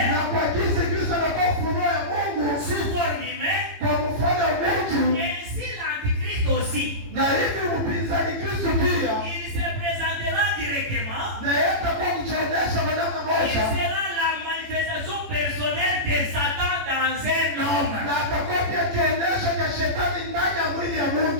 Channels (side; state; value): left; late; 18 ms